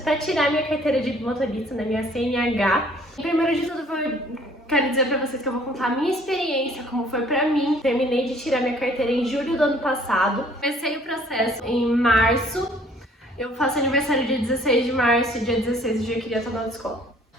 tirar minha carteira de motorista, né, minha CNH. Primeiro de tudo, quero dizer pra vocês que eu vou contar a minha experiência, como foi pra mim. Terminei de tirar minha carteira em julho do ano passado. Comecei o processo em março. Eu faço aniversário dia 16 de março e dia 16 eu já queria estar na autoescola.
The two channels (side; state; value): both; normal; correlation 0.57